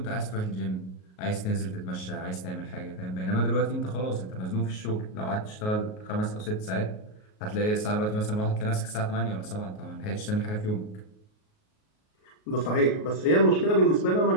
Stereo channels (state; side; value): late; right; 38 ms